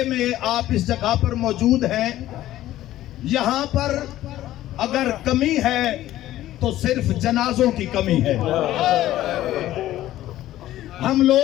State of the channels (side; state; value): right; quieter; 14.2 dB